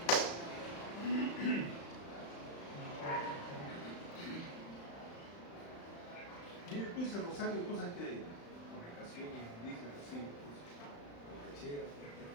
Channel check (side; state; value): right; late; 35 ms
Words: Mire, tú dices Rosario, cosas que comunicaciones, indígenas, así, borracheras.